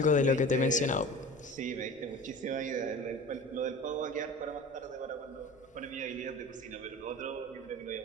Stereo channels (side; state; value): both; normal; correlation 0.37